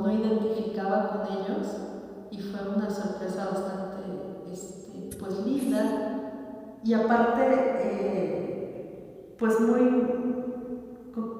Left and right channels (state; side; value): identical; both; correlation 1.00